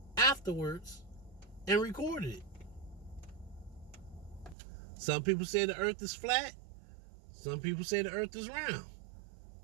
afterwards, and recorded it. Some people say the earth is flat. Some people say the earth is round.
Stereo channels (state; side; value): drops out; left; at 4.5 s